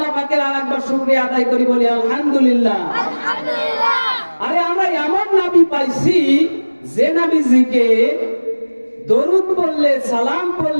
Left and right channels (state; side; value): inverted; both; correlation -1.00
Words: পাকের আরেকবার শুকরিয়া আদায় করি, বলি আলহামদুলিল্লাহ। আরে আমরা এমন নবী পাইছি যে নবীজিকে দরুদ পড়লে, সালাম